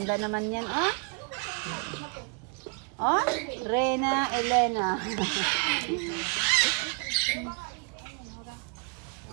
naman yan, Oh, Rena, Elena.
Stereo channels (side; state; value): left; quieter; 34.0 dB